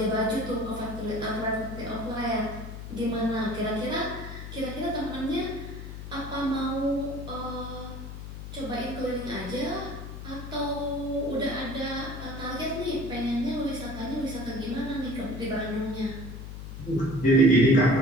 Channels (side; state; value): left; noise; hum, 9 dB below the sound